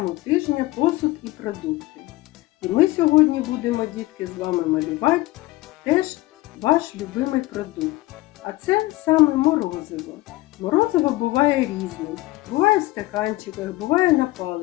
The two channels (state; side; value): quieter; right; 19.1 dB